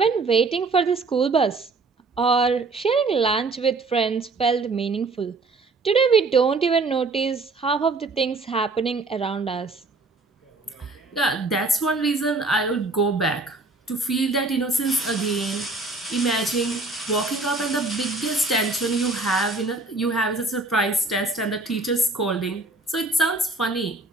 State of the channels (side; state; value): left; quieter; 3.5 dB